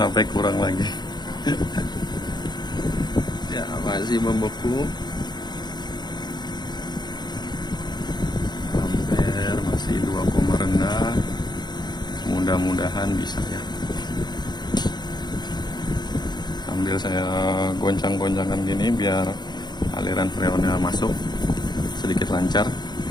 sampai kurang lagi. Ya, masih membeku. Ampere masih 2, rendah, mudah-mudahan bisa ya. Sambil saya goncang-goncangkan gini biar aliran freonnya masuk sedikit lancar.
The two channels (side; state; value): right; late; 0.21 ms